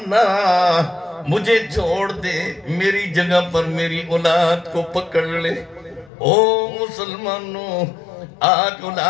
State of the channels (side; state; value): right; drops out; at 6.1 s